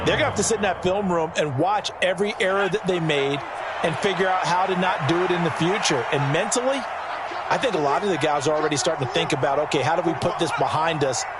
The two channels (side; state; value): both; identical; correlation 1.00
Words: going to have to sit in that film room and watch every error that they made and figure out how to not do it in the future. And mentally, I think a lot of the guys are already starting to think about, okay, how do we put this behind us